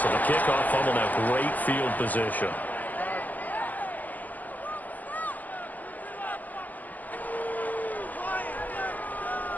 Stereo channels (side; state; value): right; late; 0.082 ms